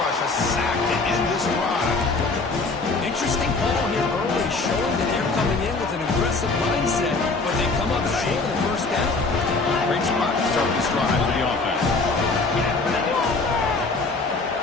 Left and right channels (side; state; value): right; quieter; 3.8 dB